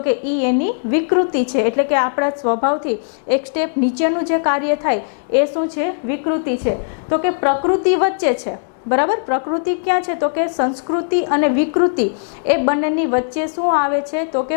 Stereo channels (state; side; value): silent; right; digital silence